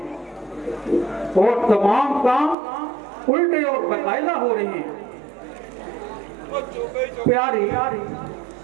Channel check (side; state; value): left; drops out; at 2.6 s